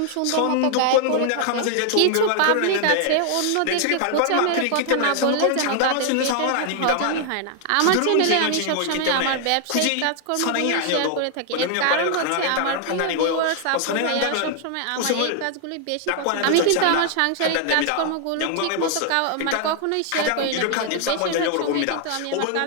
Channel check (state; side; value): different; both; correlation 0.00